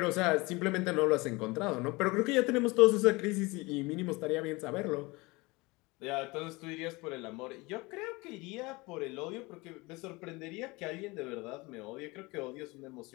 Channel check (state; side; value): quieter; right; 23.9 dB